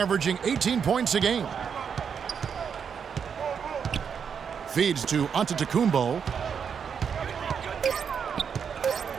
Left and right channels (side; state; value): left; quieter; 7.0 dB